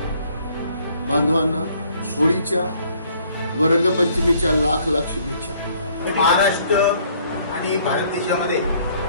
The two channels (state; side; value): inverted; both; correlation -0.62